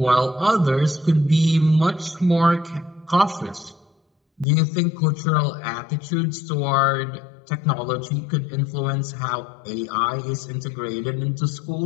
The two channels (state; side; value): drops out; right; at 4.5 s